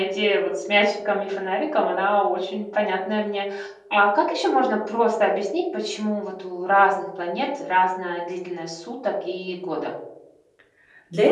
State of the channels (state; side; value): identical; both; correlation 1.00